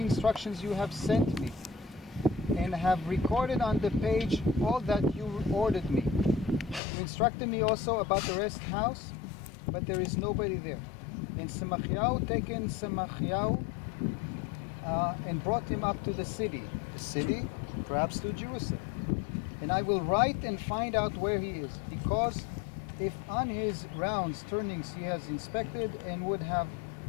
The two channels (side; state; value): right; drops out; at 6.8 s